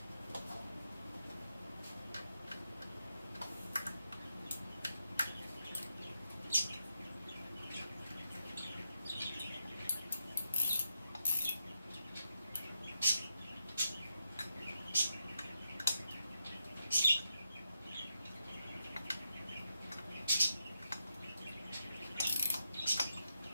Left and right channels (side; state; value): both; inverted; correlation -0.84